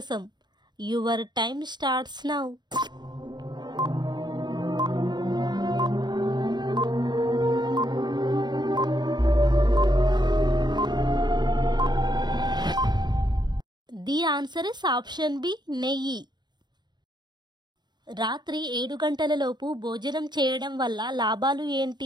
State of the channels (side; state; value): left; late; 0.21 ms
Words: Your time starts now. The answer is option B నెయ్యి. రాత్రి 7 గంటలలోపు భోజనం చేయడం వల్ల లాభాలు